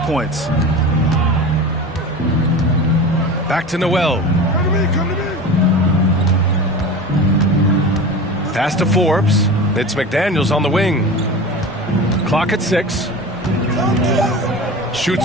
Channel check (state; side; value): normal; both; correlation 0.32